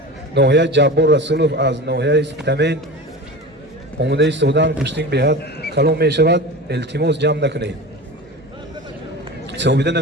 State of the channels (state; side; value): normal; both; correlation 0.32